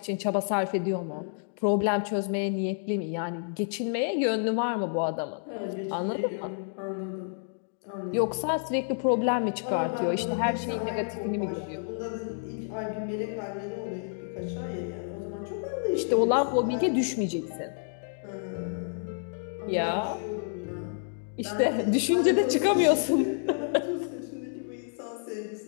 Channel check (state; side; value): silent; right; digital silence